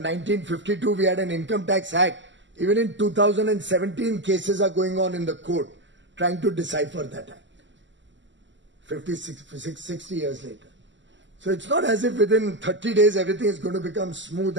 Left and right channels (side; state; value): left; late; 0.54 ms